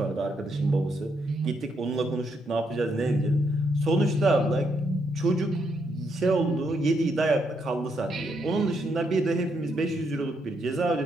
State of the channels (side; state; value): both; normal; correlation 0.77